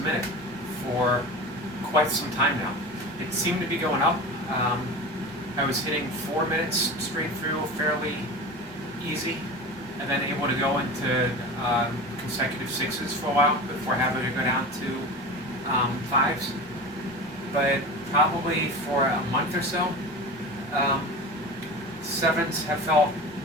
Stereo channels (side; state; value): both; normal; correlation 0.31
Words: for quite some time now. It seemed to be going up. I was hitting 4 minutes straight through fairly easy, and then able to go into consecutive 6s for a while before having to go down to 5s. But probably for a month or so, 7s have felt